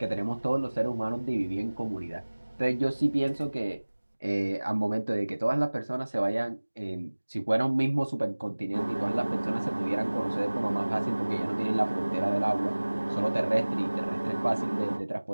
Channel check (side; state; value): both; inverted; correlation -1.00